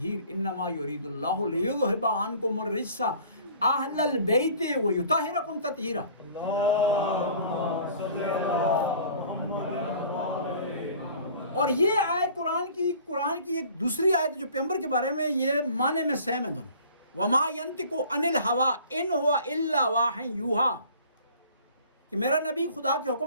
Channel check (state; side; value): inverted; both; correlation -0.49